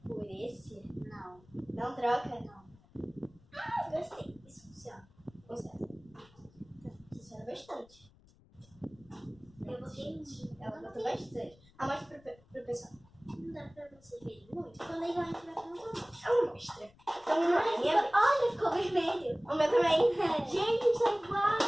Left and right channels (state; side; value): noise; left; rumble, 28 dB below the sound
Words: por esse? Não. Não troca? Não. Ah, gostei. Isso funciona. Funciona bastante. Eu botei tinta. Ela botou bastante. Mostra pro pessoal. Não dá pra vocês verem muito. Quando a gente vai colocar. Ela mostra. Então, Olha, ficou vermelho. o meu também. Gente, são